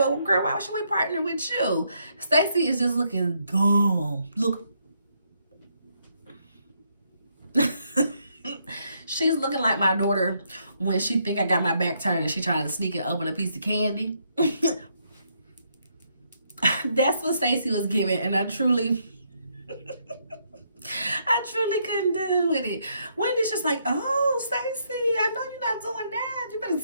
girl, why should we partner with you? Stacey is just looking dumb. Look. She's looking like my daughter when she think I got my back turned and she trying to sneak and open a piece of candy. That's what Stacey was giving, and I truly couldn't do with it. Wendy's just like, oh, Stacey, I know you're not doing that. You better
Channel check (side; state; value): both; inverted; correlation -0.75